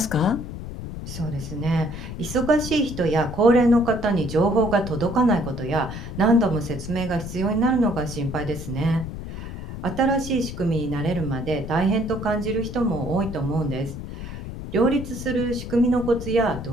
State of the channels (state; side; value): noise; left; rumble, 8 dB below the sound